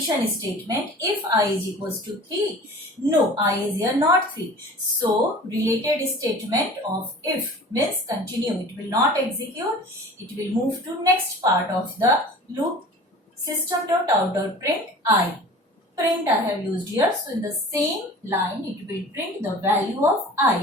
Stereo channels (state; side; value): normal; both; correlation 0.41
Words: statement. If I is equals to 3, no, I is here not 3. So related statement of if means continue, it will not execute, it will move to next part of the loop, system.out.print I. Print I have used here, so in the same line it will print the value of